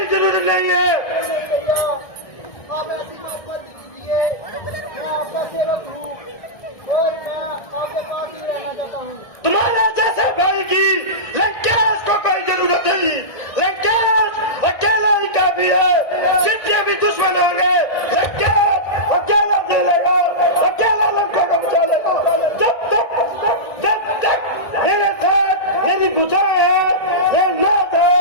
जरूरत नहीं है। भैया, आप ऐसी बात मत कीजिए, मैं आपका सेवक हूँ और मैं आपके पास ही रहना चाहता हूँ। तुम्हारे जैसे भाई की लंकेश को कोई जरूरत नहीं। लंकेश अकेला ही काफी है। जितने भी दुश्मन होंगे लंकेश अकेला झेलेगा, अकेला लंका को बचा लेगा। जब तक मेरे साथ मेरी बुझाएं है, ये नाथ है,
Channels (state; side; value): late; right; 1.6 ms